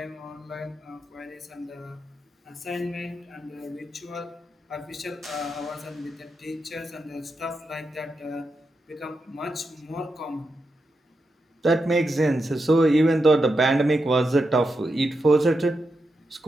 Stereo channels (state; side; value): normal; both; correlation 0.87